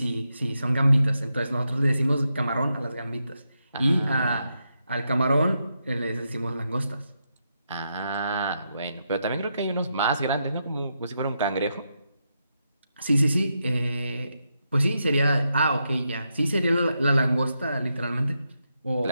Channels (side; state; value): both; inverted; correlation -0.84